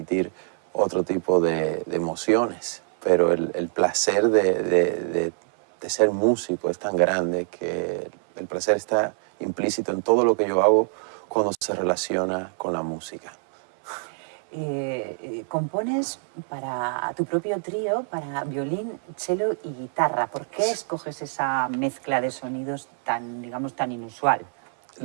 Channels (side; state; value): left; silent; 59 dB below the other